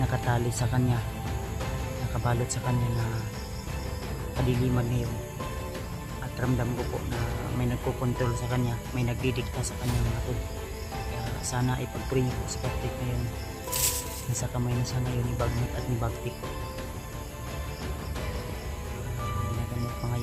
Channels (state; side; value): identical; both; correlation 1.00